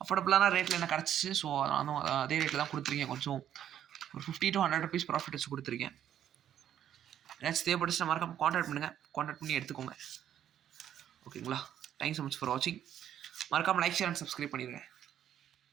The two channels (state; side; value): quieter; left; 10.4 dB